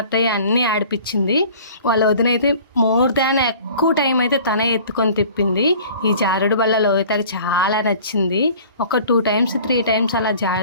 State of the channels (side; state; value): both; inverted; correlation -0.47